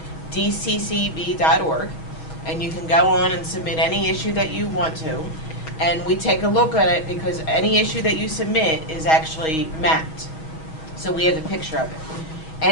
And you can go on and submit any issue that you want to. And we take a look at it because any issue that you submit is actually mapped. So we have a picture of it.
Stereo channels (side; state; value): right; late; 6.3 ms